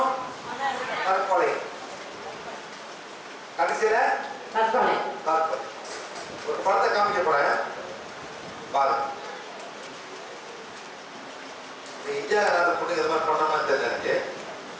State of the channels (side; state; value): both; identical; correlation 1.00